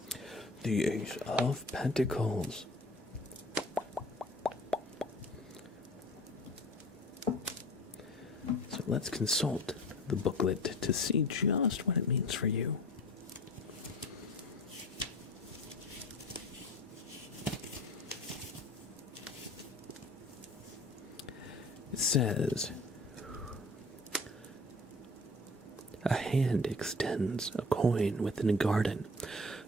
The Ace of Pentacles. So let's consult the booklet to see just what it means for you. It says, a hand extends a coin within a garden,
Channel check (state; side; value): normal; both; correlation 0.44